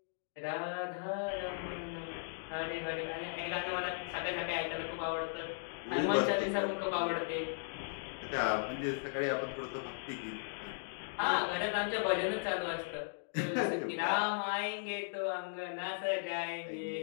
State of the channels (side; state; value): right; silent; digital silence